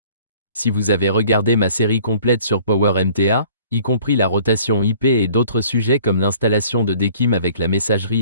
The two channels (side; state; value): both; inverted; correlation -0.53